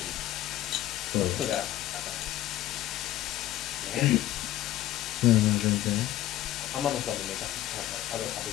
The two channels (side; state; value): right; quieter; 14.2 dB